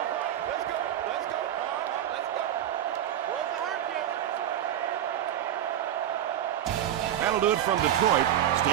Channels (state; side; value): quieter; left; 11.1 dB